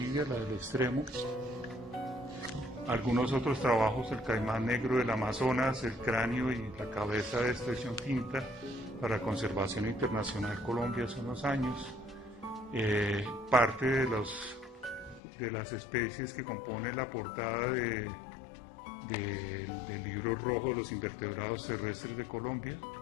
la del extremo. Algunos otros trabajos, el caimán negro del Amazonas, el cráneo y la cabeza de expresión tinta para Conservación Internacional Colombia hace unos años. Parte de las especies que componen la portada del libro rojo de los invertebrados terrestres de Colombia.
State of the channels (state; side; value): drops out; right; at 15.2 s